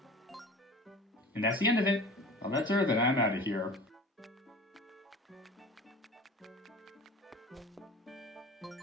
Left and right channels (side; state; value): both; normal; correlation 0.39